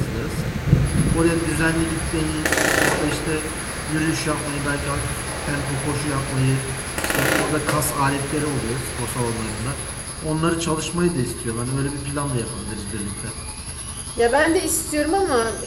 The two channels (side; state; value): both; identical; correlation 1.00